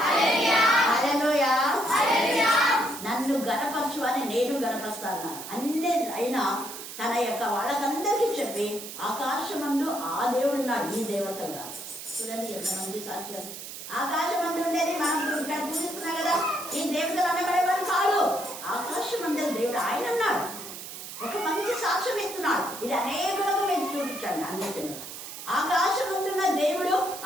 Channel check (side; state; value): right; noise; hiss, 10 dB below the sound